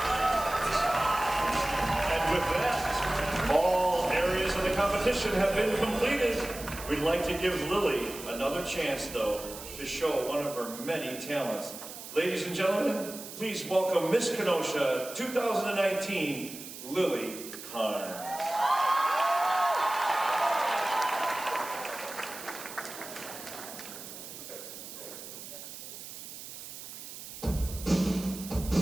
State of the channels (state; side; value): noise; right; hiss, 12 dB below the sound